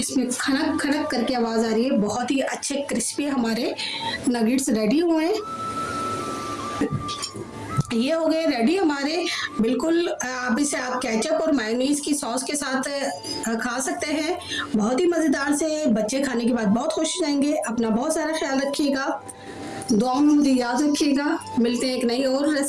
खनक खनक करके आवाज आ रही है। बहुत ही अच्छे क्रिस्पी हमारे नगेट्स रेडी हुए हैं। ये हो गए रेडी हमारे बिल्कुल। अब इसे आप केचप और मेयोनीज की सॉस के साथ खा सकते हैं। बहुत ही मज़ेदार से, बच्चे खाने के बाद बहुत खुश हो जाएंगे। अपना बहुत सारा ख्याल रखिएगा, दुआओं में मुझे याद रखिएगा। मिलते हैं एक नई और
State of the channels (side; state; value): both; identical; correlation 1.00